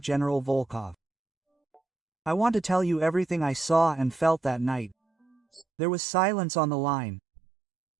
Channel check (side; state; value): left; drops out; at 5.7 s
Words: General Volkov. I want to tell you everything I saw and felt that night. There was silence on the line.